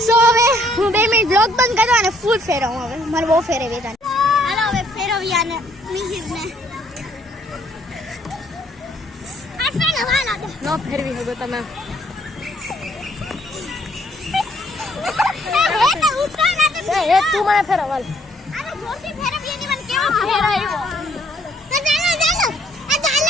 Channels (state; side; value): normal; both; correlation 0.66